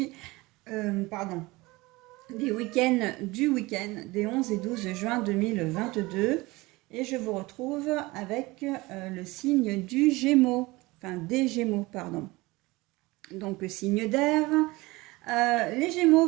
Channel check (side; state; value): left; quieter; 21.7 dB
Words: du week-end des 11 et 12 juin 2022. Et je vous retrouve avec le signe du Gémeaux, enfin des Gémeaux, pardon. Donc signe d'air. Les Gémeaux,